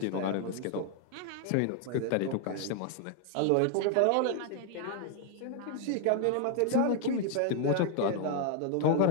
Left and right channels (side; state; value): both; different; correlation 0.00